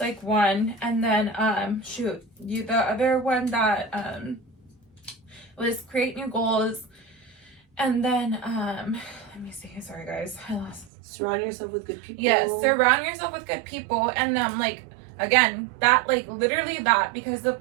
one, and then the other one that was create new goals, and then let me see. Sorry guys, I lost. Surround yourself with good people. Yes, surround yourself with good people, and like, again, that, like, literally that, because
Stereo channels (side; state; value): left; drops out; at 10.9 s